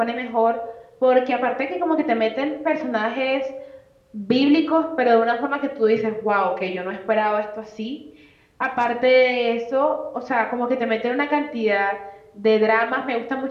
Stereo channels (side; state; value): both; identical; correlation 1.00